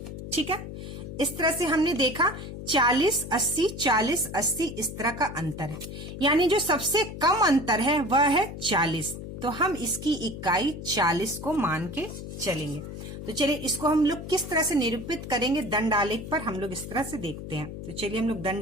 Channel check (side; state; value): left; noise; hum, 9 dB below the sound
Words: ठीक है। इस तरह से हमने देखा 40 80 40 80 इस तरह का अंतर है, यानी जो सबसे कम अंतर है वह है 40। तो हम इसकी इकाई 40 को मान के चलेंगे। तो चलिए इसको हम लोग किस तरह से निरूपित करेंगे, दंड आलेख पर हम लोग इस तरह से देखते हैं। तो चलिए हम लोग